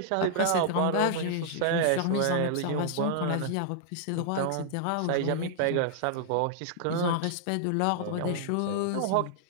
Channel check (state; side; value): different; both; correlation -0.01